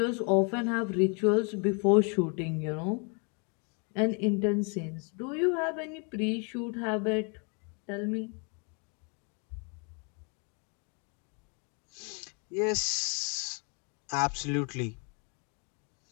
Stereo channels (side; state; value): right; quieter; 36.2 dB